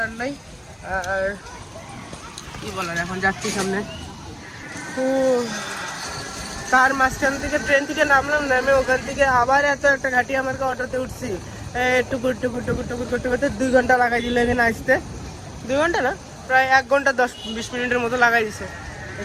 নাই। আর কি বলার, এখন যাচ্ছি সামনে। তো তার মাঝখান থেকে ট্রেন থেকে নামলাম, নামে ওখান থেকে আবার এত একটা ঘাটি আমাকে অটোতে উঠছি, টুকুর টুকুর টুকুর টুকুর করতে করতে 2 ঘন্টা লাগাই দিল এখানে আসতে। 2 ঘন্টা না, প্রায় 1 ঘন্টা 10-20 মিনিটের মতো লাগাই দিছে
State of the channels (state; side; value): identical; both; correlation 1.00